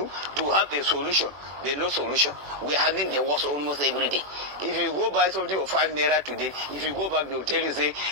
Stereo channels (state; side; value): late; left; 21 ms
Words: to have a solution. There's no solution. We're having the worst almost every day. If you go buy something for 5 naira today, if you go back, they'll tell you, say,